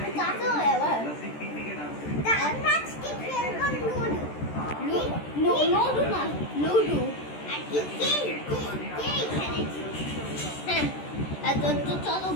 চাচা হয় আবার আজকে খেলবো লুডো না লুডো আর কি কে এখানে হ্যাঁ তো চলো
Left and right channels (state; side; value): late; right; 13 ms